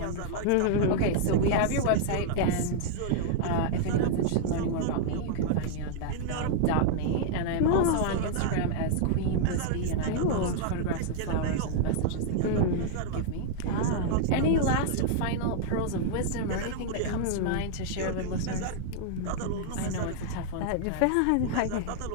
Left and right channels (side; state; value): both; different; correlation 0.00